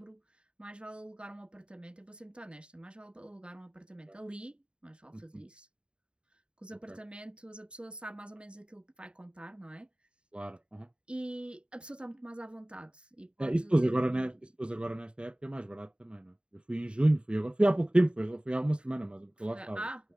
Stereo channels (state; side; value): late; left; 0.053 ms